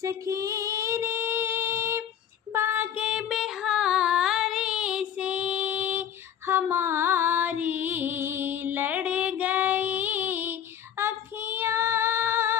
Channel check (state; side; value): quieter; right; 9.6 dB